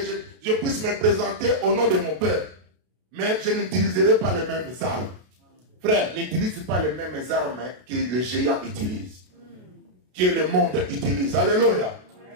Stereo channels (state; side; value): late; left; 32 ms